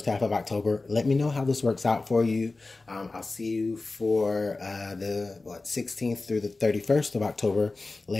half of October. Let me know how this works out for you. I'll see you for the 16th through the 31st of October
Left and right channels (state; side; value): quieter; right; 3.4 dB